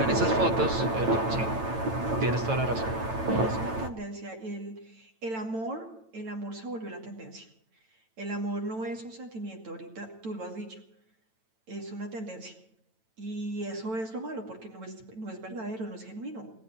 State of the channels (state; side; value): late; left; 9.0 ms